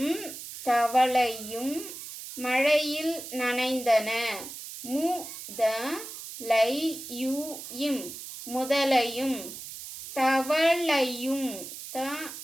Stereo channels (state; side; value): noise; right; hiss, 11 dB below the sound